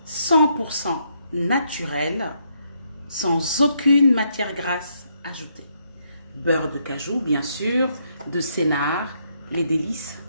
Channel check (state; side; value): inverted; both; correlation -0.75